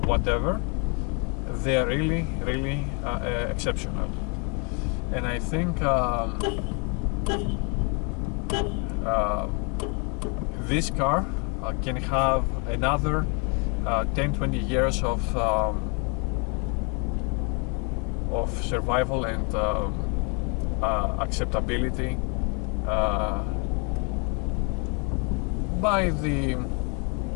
whatever, they are really exceptional. And I think this car can have another 10-20 years of survival and by the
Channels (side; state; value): right; quieter; 32.4 dB